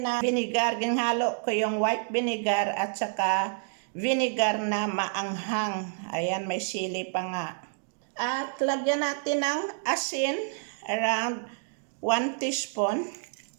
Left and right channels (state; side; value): silent; left; digital silence